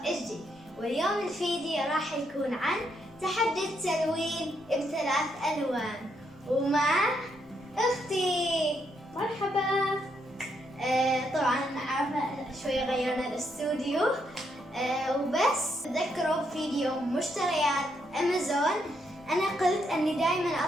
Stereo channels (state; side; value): normal; both; correlation 0.77